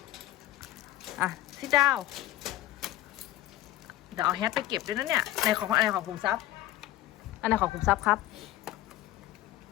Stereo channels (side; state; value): right; quieter; 14.7 dB